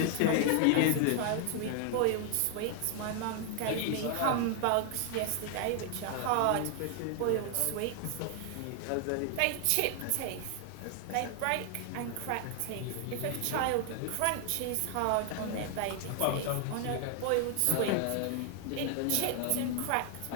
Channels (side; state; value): both; different; correlation 0.00